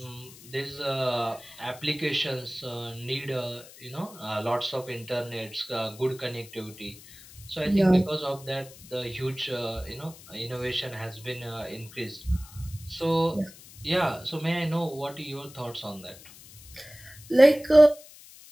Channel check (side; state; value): left; noise; hiss, 19 dB below the sound